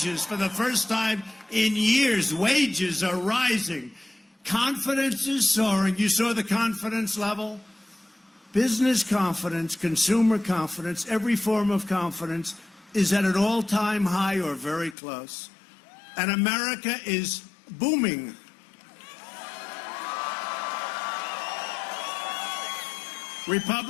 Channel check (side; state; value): right; drops out; at 15.0 s